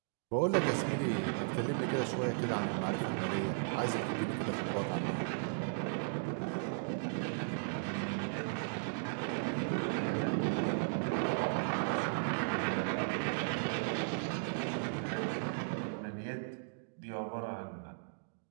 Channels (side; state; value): left; silent; digital silence